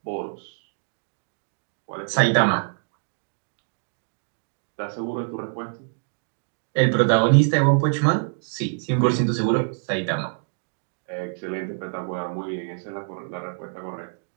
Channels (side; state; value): left; silent; digital silence